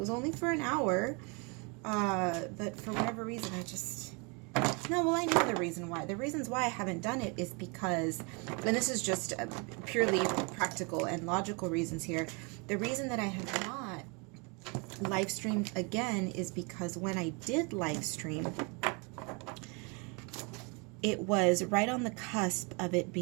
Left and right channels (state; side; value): quieter; left; 32.1 dB